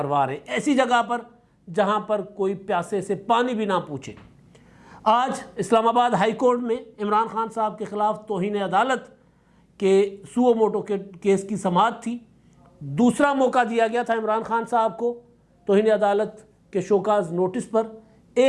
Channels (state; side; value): identical; both; correlation 1.00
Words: رہے ہیں، ایسی جگہ پر جہاں پر کوئی پیاسے سے پانی بھی نہ پوچھے۔ آج اسلام آباد ہائی کورٹ میں عمران خان صاحب کے خلاف توہین عدالت کے سو موٹو کے کیس کی سماعت تھی۔ دوسرا موقع دیا گیا تھا عمران خان صاحب کو توہین عدالت کے شوکاز نوٹس پر۔